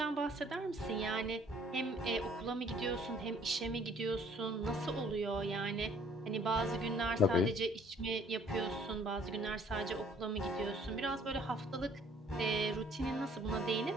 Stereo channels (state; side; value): normal; both; correlation 0.59